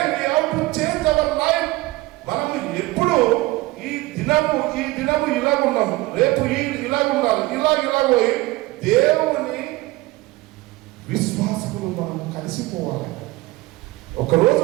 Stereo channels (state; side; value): quieter; left; 20.1 dB